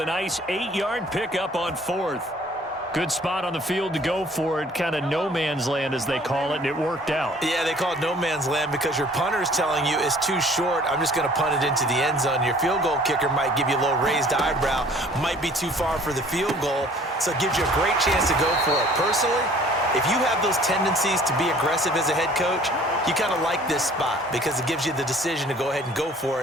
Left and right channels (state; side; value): normal; both; correlation 0.53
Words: nice 8-yard pickup on 4th. Good spot on the field to go for it. Kind of no man's land, as they call it, and it worked out. Yeah, they call it no man's land because your punter's telling you it's too short. I'm just going to punt it into the end zone. Your field goal kicker might give you a little raised eyebrow. Might be too far for the field goal, so it gives you a great chance to go for it. Personally, if you have those tendencies to be aggressive as a head coach, you kind of like this spot because it gives you the decision to go ahead and go for